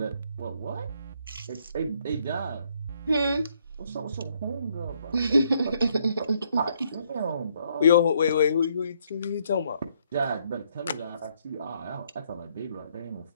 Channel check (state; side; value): inverted; both; correlation -0.70